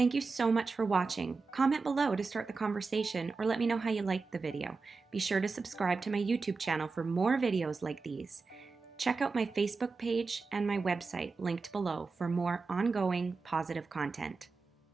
you so much for watching. Comment below to start the conversation or let me know how you liked the video. Be sure to subscribe to my YouTube channel for more videos like these. Check out my Facebook page and my website linked below for more ongoing positive content.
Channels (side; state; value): left; quieter; 4.3 dB